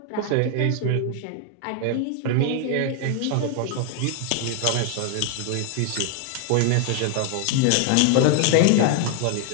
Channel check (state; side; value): different; both; correlation 0.00